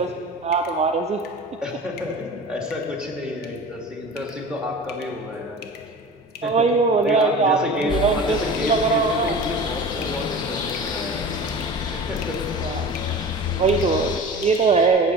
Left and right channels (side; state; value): both; normal; correlation 0.36